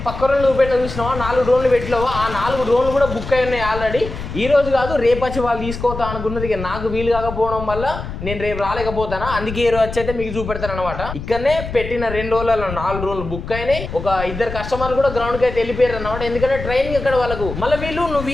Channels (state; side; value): noise; left; rumble, 8 dB below the sound